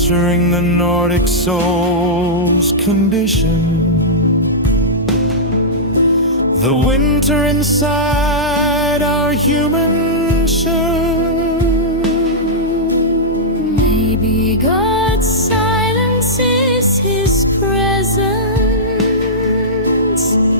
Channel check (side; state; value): both; normal; correlation -0.13